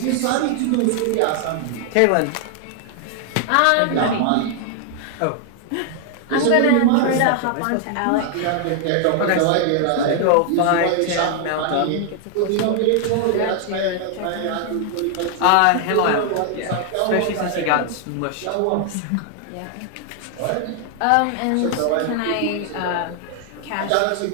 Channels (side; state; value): both; different; correlation 0.00